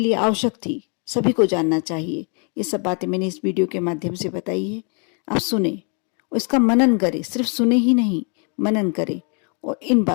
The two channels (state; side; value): quieter; right; 37.7 dB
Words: आवश्यक थी, सभी को जानना चाहिए, ये सब बातें मैंने इस वीडियो के माध्यम से बताई है। आप सुने और इसका मनन करें, सिर्फ सुने ही नहीं, मनन करें और इन